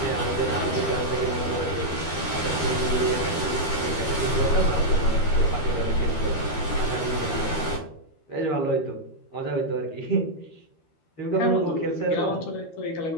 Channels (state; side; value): late; right; 13 ms